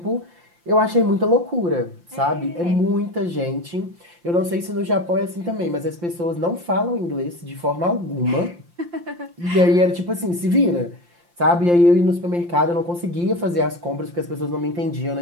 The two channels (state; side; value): late; left; 5.8 ms